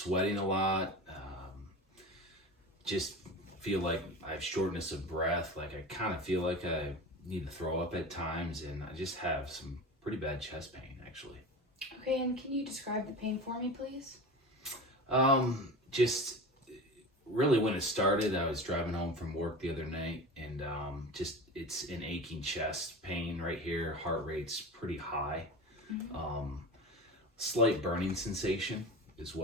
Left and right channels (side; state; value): both; normal; correlation 0.31